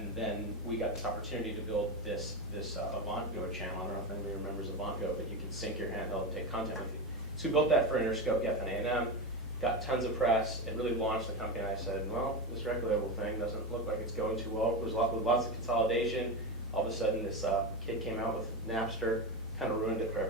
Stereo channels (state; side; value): normal; both; correlation 0.18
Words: then we got this opportunity to build this AvantGo channel. I don't know if anybody remembers AvantGo, but you can sync your handheld and take content with you. So we built that for Interscope, Geffen A&M, got tons of press. It really launched the company, and I said, well, this record label thing doesn't look like it's going too well. There's lots of consolidation. All of a sudden, this kid came out with Napster, kind of ruined it for